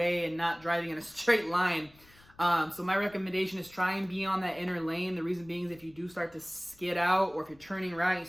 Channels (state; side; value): noise; left; rumble, 27 dB below the sound